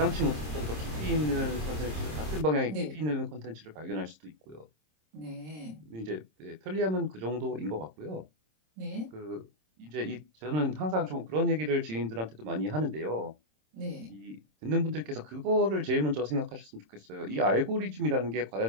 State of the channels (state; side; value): late; left; 26 ms